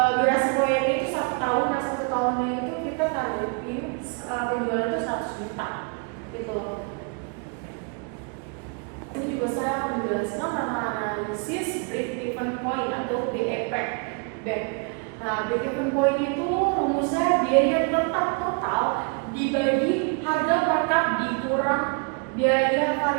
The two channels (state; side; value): quieter; left; 34.5 dB